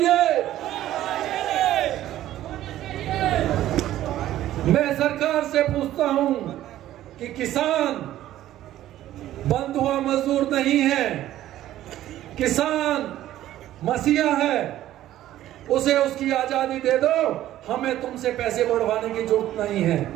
मैं सरकार से पूछता हूं कि किसान बंद हुआ मजदूर नहीं है, किसान मसीहा है, उसे उसकी आजादी दे दो। हमें तुमसे पैसे बढ़वाने की जरूरत नहीं है।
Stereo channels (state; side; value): quieter; left; 13.5 dB